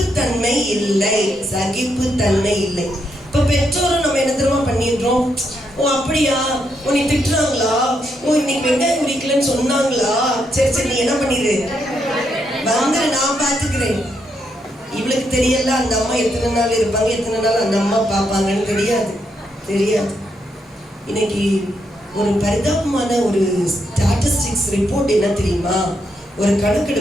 இல்லை, சகிப்புத்தன்மை இல்லை. இப்ப பெற்றோரும் நம்ம என்ன தெரியுமா பண்ணிடுறோம்? ஓ அப்படியா, உன்னை திட்டுறாங்களா, ஓ இன்னைக்கு வெங்காயம் உரிக்கலன்னு சொன்னாங்களா, சரி நீ என்ன பண்ணிடு, நான் பாத்துக்கிறேன். இவளுக்கு தெரியல அந்த அம்மா எத்தனை நாள் இருப்பாங்க, எத்தனை நாள் அந்த அம்மா பார்ப்பாங்கன்னு தெரியாது. இன்னைக்கு ஒரு பரிதாபமான ஒரு ஸ்டாட்டிஸ்டிக்ஸ் ரிப்போர்ட் என்ன தெரியுமா? ஒரு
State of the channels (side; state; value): both; normal; correlation 0.79